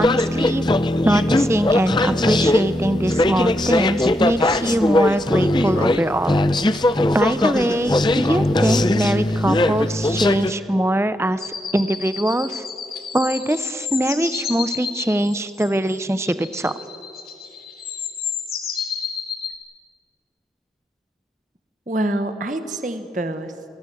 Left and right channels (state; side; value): normal; both; correlation 0.81